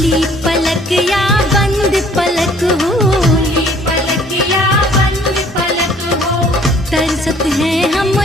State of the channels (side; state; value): both; normal; correlation 0.57